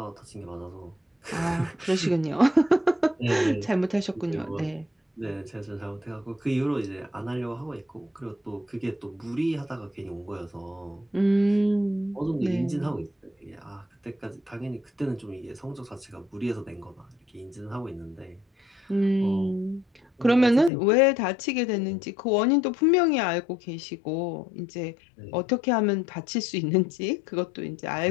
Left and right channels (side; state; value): right; drops out; at 20.7 s